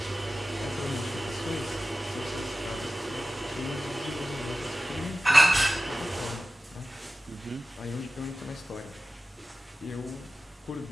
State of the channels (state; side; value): normal; both; correlation 0.94